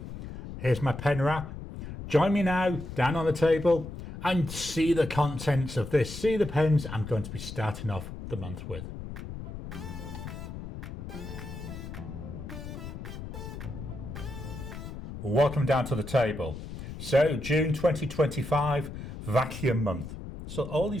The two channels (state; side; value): noise; left; rumble, 10 dB below the sound